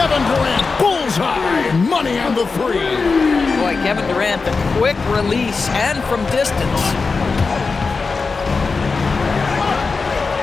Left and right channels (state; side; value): quieter; right; 4.4 dB